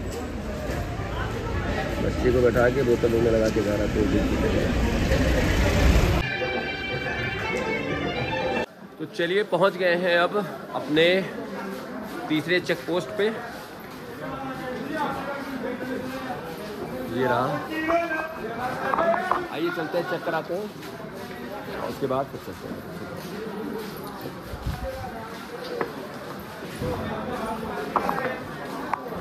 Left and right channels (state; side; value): identical; both; correlation 1.00